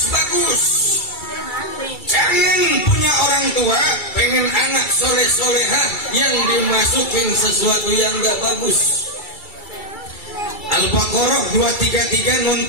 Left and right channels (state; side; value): late; right; 2.3 ms